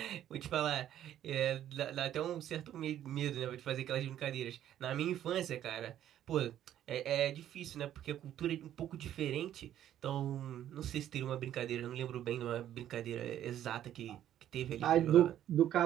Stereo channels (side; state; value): left; quieter; 11.4 dB